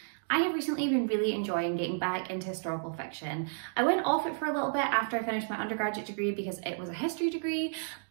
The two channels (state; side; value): silent; left; digital silence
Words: I have recently been really enjoying getting back into historical fiction. I went off it for a little bit after I finished my undergraduate degree because it was a history degree,